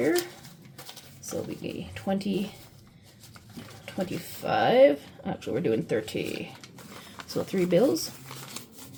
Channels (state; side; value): identical; both; correlation 1.00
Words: So we get 20, 25. Actually, we're doing 30. So 3 bills.